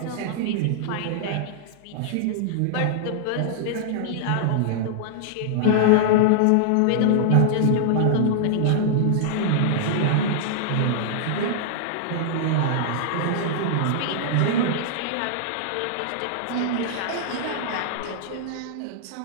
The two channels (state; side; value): different; both; correlation -0.01